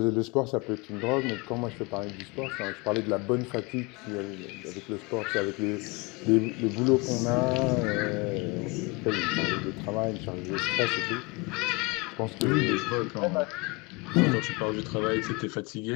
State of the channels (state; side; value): quieter; right; 27.2 dB